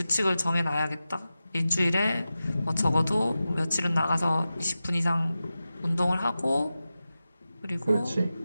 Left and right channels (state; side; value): inverted; both; correlation -0.94